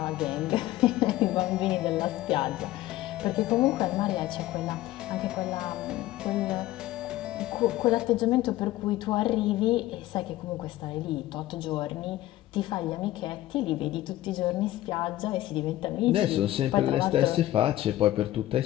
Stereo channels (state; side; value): quieter; right; 15.4 dB